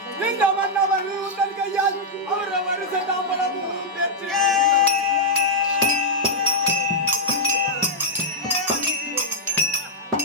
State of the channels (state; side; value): normal; both; correlation -0.05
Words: இந்த மன்னவர் உங்கள் கையால் அவர வருஷ தாம்பலமும் பெற்று